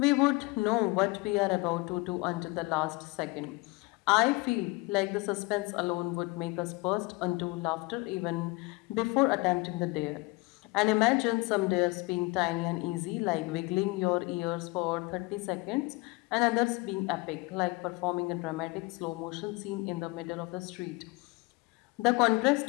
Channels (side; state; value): right; quieter; 24.3 dB